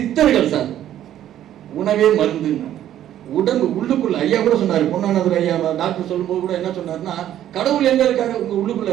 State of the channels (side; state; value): left; quieter; 11.6 dB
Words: சார் உணவே மருந்து. உடம்பு உள்ளுக்குள்ள ஐயா கூட சொன்னாரு, பொன்னானவர் ஐயா டாக்டர் சொல்லும்போது கூட என்ன சொன்னாருன்னா, கடவுள் எங்க இருக்காரு? உங்க உள்ளுக்குள்ள